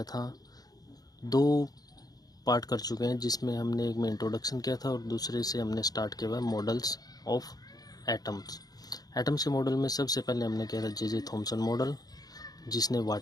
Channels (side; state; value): right; late; 0.19 ms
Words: था 2 पार्ट कर चुके हैं, जिसमें हमने एक में इंट्रोडक्शन किया था और दूसरे से हमने स्टार्ट किया हुआ मॉडल्स ऑफ एटम्स। एटम्स के मॉडल में सबसे पहले हमने किया था जे थॉमसन मॉडल, जिसने